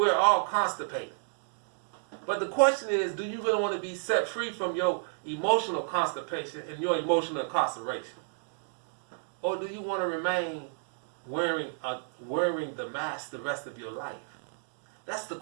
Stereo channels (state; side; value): silent; left; digital silence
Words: all constipated. But the question is, do you really want to be set free from your emotional constipation and your emotional incarceration? Or do you want to remain wearing the mask the rest of your life? That's the